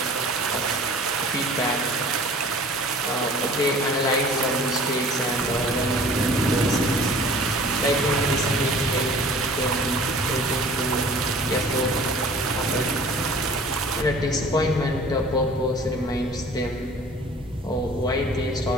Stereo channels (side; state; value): both; normal; correlation 0.47